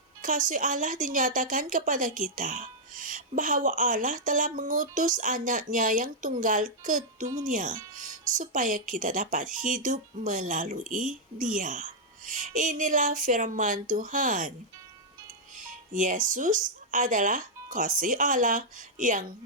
kasih Allah dinyatakan kepada kita, bahwa Allah telah mengutus anaknya yang tunggal ke dunia, supaya kita dapat hidup melalui Dia. Inilah firman Tuhan. Yesus adalah kasih Allah yang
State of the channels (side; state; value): both; normal; correlation -0.05